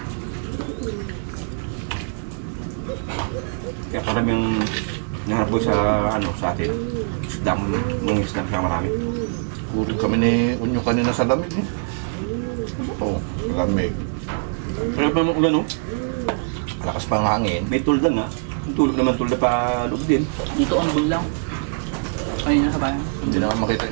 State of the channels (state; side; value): silent; left; digital silence